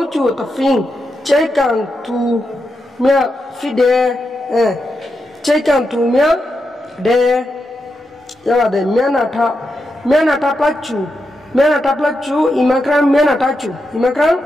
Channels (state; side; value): normal; both; correlation 0.86